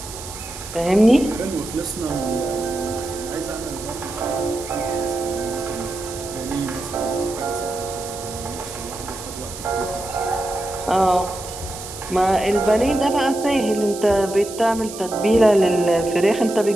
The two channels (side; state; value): right; noise; hiss, 12 dB below the sound